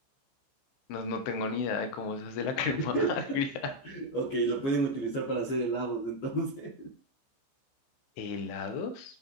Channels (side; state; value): right; late; 15 ms